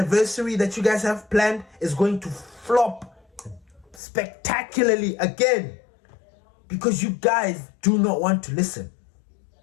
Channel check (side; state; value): right; drops out; at 4.0 s